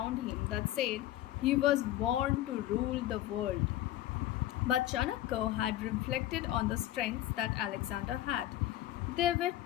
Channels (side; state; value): right; quieter; 14.2 dB